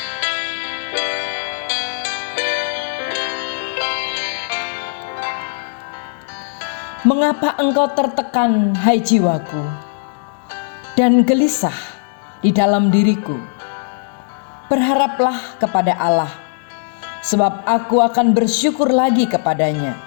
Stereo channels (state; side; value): silent; right; 66 dB below the other